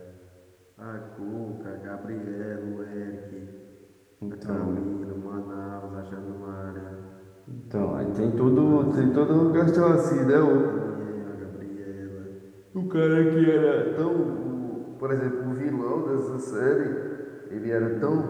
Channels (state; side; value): identical; both; correlation 1.00